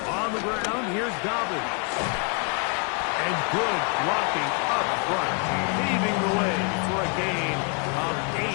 On the ground, here's Dobbins. And good blocking up front, paving the way for a gain of 8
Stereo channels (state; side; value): quieter; right; 36.5 dB